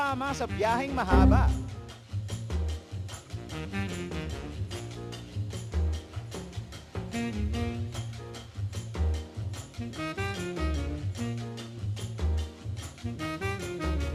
sa biyaheng mahaba.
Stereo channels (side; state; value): both; identical; correlation 1.00